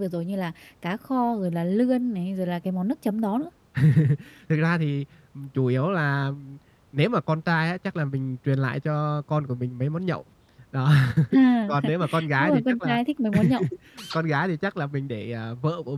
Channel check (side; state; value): both; identical; correlation 1.00